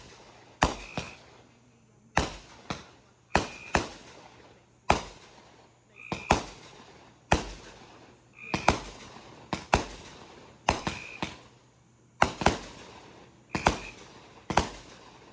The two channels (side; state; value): both; identical; correlation 1.00